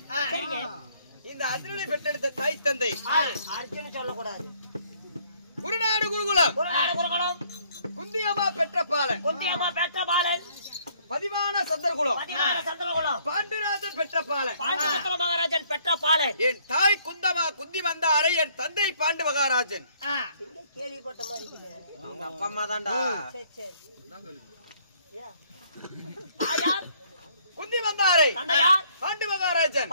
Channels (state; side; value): inverted; both; correlation -0.63